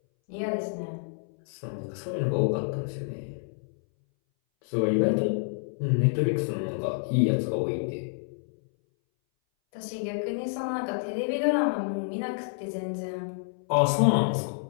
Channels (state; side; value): silent; right; 59 dB below the other